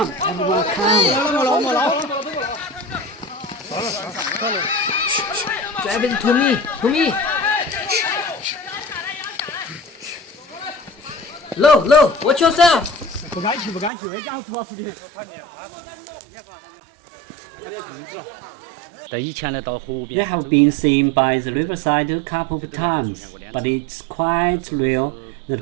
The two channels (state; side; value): drops out; left; at 13.9 s